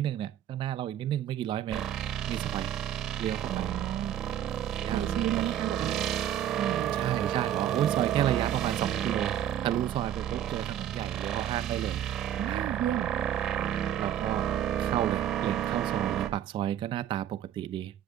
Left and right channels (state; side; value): quieter; left; 10.9 dB